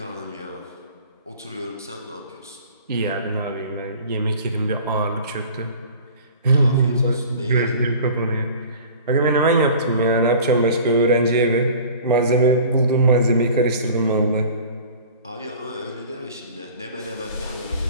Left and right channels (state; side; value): inverted; both; correlation -0.43